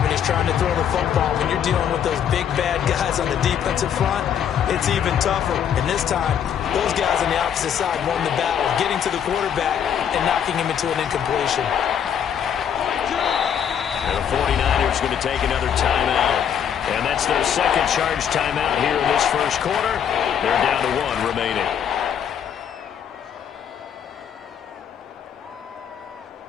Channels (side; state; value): right; quieter; 8.7 dB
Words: he's trying to throw the football. When you're dealing with those big, bad guys on the defensive front, it's even tougher. And this time, those guys on the opposite side won the battle, getting to the quarterback and knocking him into an incompletion. And the 49ers going to take another timeout. And that's their second charge timeout here in this first quarter. They're down to 1 remaining.